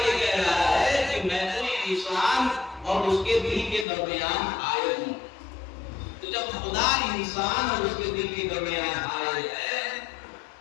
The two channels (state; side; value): drops out; right; at 3.9 s